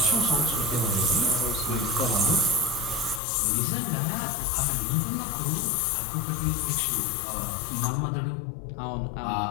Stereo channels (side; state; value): right; drops out; at 3.2 s